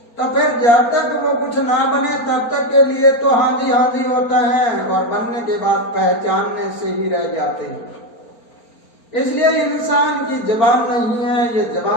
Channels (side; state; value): right; late; 4.4 ms